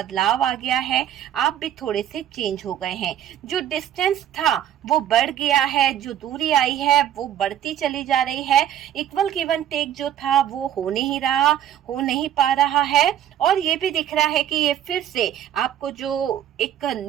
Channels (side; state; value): left; quieter; 10.9 dB